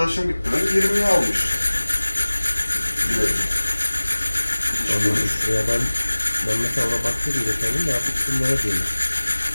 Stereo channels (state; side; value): inverted; both; correlation -1.00